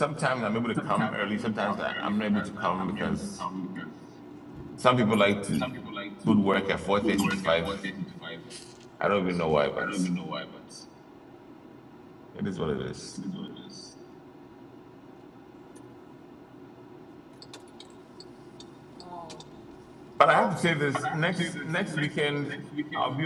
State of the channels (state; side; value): identical; both; correlation 1.00